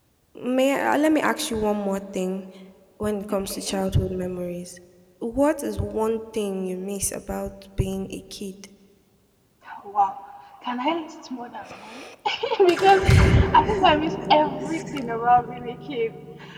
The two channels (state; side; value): identical; both; correlation 1.00